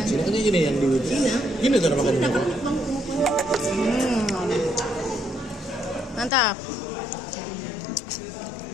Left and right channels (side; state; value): right; drops out; at 6.3 s